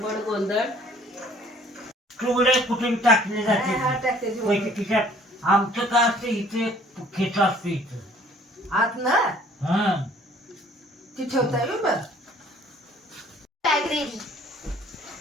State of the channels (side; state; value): both; normal; correlation 0.56